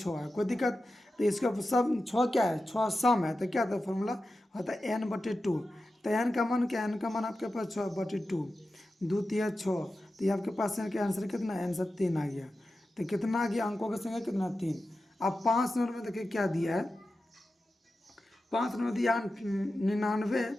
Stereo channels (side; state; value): both; normal; correlation 0.92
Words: है। कोई दिक्कत। तो इसका सब 6 क्या है 6 सम है, तो क्या था फॉर्मूला होता है n/2। तो एन का मान क्या है, एन का मान आपके पास 6/2, 2 3 6। तो ये आपके पास एन का आंसर कितना है, आंसर 3 आ गया। तो कितना आ गया अंकों की संख्या कितना 3। अब 5 नंबर में देखिए क्या दिया है, 5 नंबर दिया 99